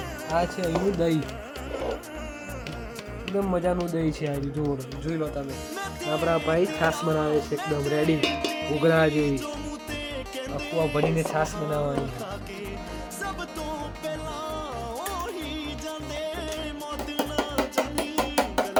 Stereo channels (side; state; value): both; identical; correlation 1.00